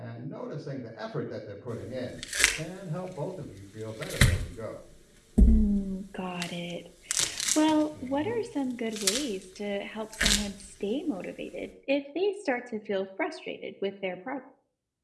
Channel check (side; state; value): both; identical; correlation 1.00